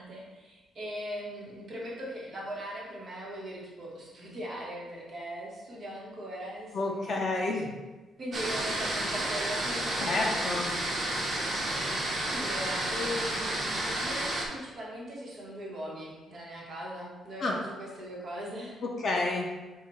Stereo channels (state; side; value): normal; both; correlation 0.74